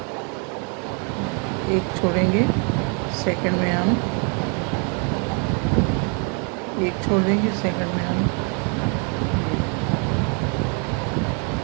एक छोड़ेंगे, सेकंड में हम एक छोड़ देंगे, सेकंड में हम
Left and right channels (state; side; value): quieter; left; 37.5 dB